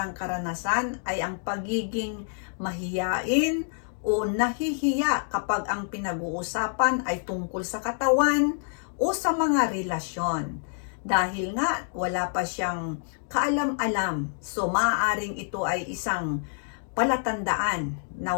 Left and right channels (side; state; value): right; silent; digital silence